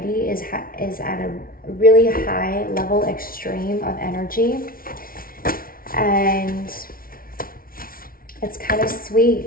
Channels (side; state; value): right; late; 0.43 ms